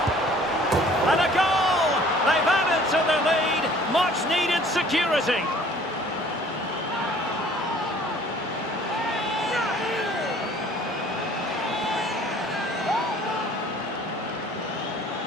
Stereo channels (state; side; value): normal; both; correlation 0.53